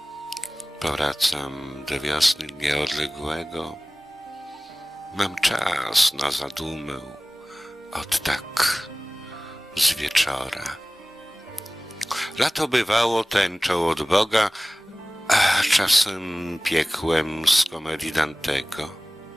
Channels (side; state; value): both; normal; correlation 0.98